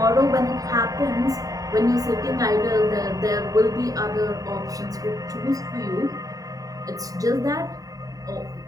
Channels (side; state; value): left; late; 0.17 ms